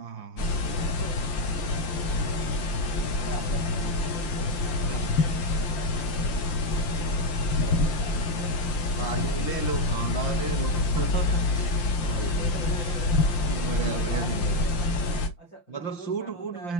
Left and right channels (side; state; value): right; late; 5.8 ms